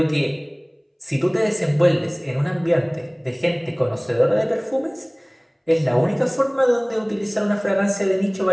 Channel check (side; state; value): both; identical; correlation 1.00